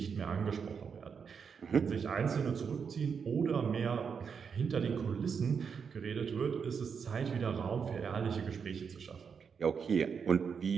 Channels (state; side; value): quieter; left; 6.4 dB